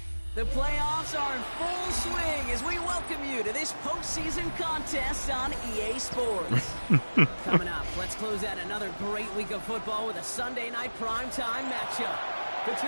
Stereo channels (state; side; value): inverted; both; correlation -1.00